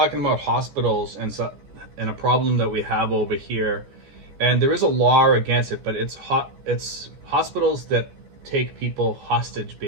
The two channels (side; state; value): left; late; 14 ms